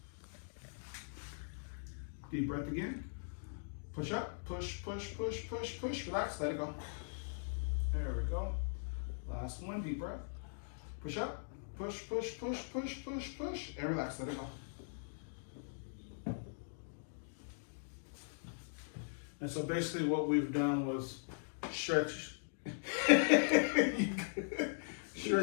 Deep breath again. Push up, push, push, push, push, push. Relax, let it go. There we go. Last one, deep breath. Push up, push, push, push, push, push, push, and relax, let it go. And so basically what we've done was stretch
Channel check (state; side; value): silent; right; digital silence